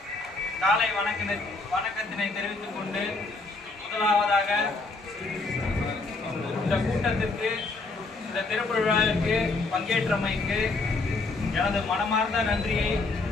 காலை வணக்கத்தினை தெரிவித்துக் கொண்டு, முதலாவதாக இந்த கூட்டத்திற்கு, இந்த திறப்பு விழாவிற்கு பங்கேற்றமைக்கு எனது மனமார்ந்த நன்றியை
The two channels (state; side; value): quieter; right; 3.5 dB